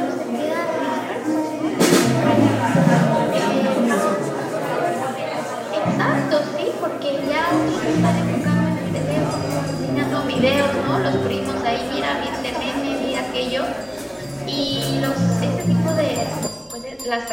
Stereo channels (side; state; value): both; identical; correlation 1.00